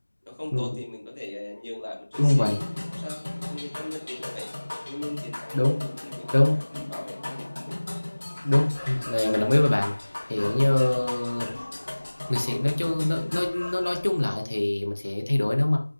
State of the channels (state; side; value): inverted; both; correlation -1.00